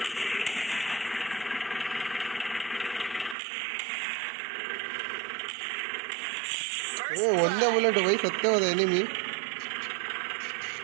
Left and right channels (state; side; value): drops out; left; at 3.4 s